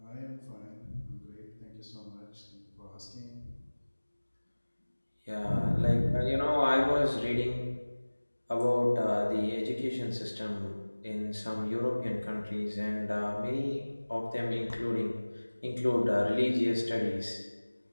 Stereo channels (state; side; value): inverted; both; correlation -1.00